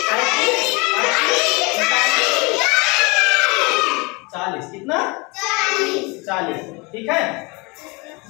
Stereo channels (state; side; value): quieter; right; 27.5 dB